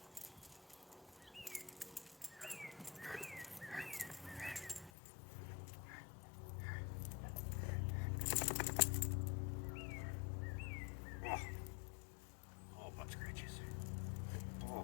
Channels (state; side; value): drops out; right; at 4.9 s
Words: Oh, butt scratches.